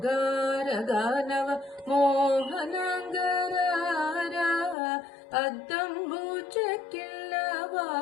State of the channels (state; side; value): drops out; right; at 4.8 s